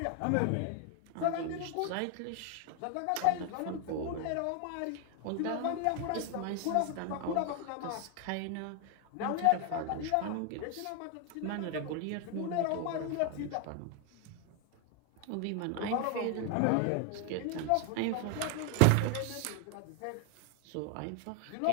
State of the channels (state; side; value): different; both; correlation 0.01